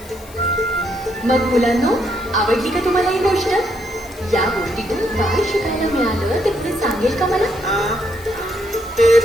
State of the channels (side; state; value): left; noise; hiss, 21 dB below the sound